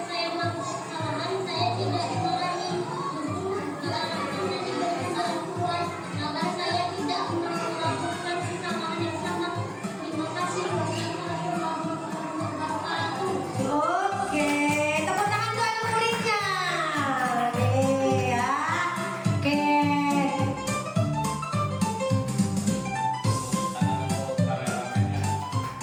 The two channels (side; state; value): both; identical; correlation 1.00